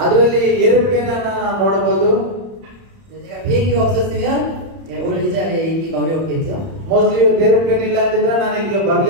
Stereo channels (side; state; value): left; late; 31 ms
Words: ಅದರಲ್ಲಿ ಏರೋಪ್ಲೇನ್ ಅನ್ನು ನಾವು ನೋಡಬಹುದು. 제가 비행기가 없었으면 오늘 이 자리에 있기가 어렵겠죠. ಮೋಸ್ಟ್ಲಿ ಏರೋಪ್ಲೇನ್ ಇಲ್ಲ ಅಂದಿದ್ರೆ ನಾನು ಇಲ್ಲಿಗೆ